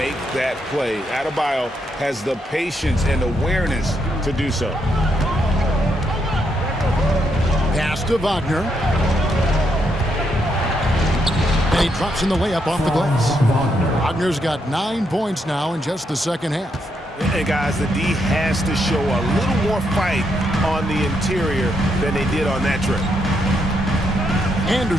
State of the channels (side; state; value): both; normal; correlation 0.78